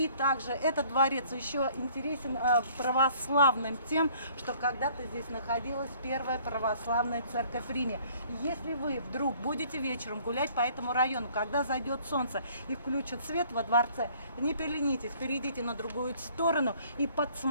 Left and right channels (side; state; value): both; inverted; correlation -0.57